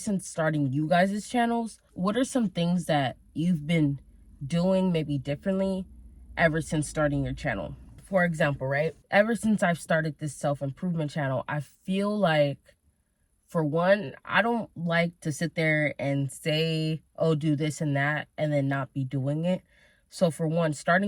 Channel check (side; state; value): both; identical; correlation 1.00